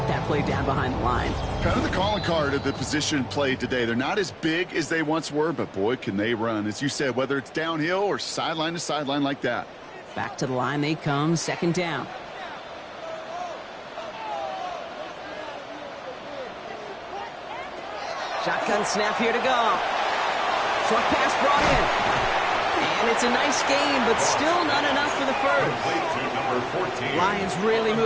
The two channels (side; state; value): both; identical; correlation 1.00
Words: that play down behind the line. Kind of the calling card of the position played today. They're not as big as they once were, but boy, can they run. As you said, whether it's downhill or sideline to sideline like that. Back to the line they come, second down. Shotgun snap here to go. Short pass brought in. And it's a nice game, but still not enough for the first. Lions really